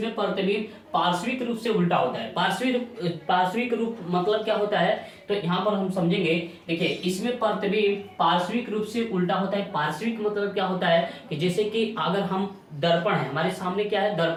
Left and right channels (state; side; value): identical; both; correlation 1.00